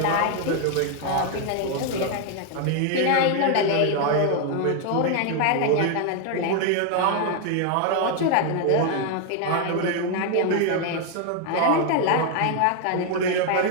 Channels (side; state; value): both; different; correlation 0.00